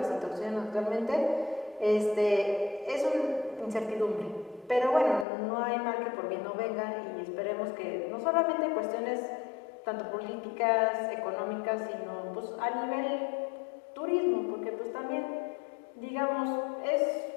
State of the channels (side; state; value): right; drops out; at 5.2 s